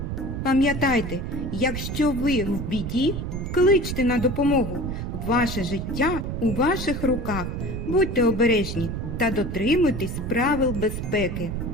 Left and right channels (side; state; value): right; noise; rumble, 4 dB below the sound